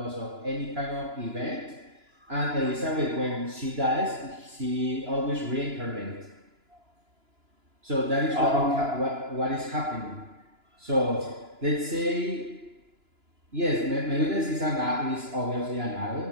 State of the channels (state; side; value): late; left; 2.9 ms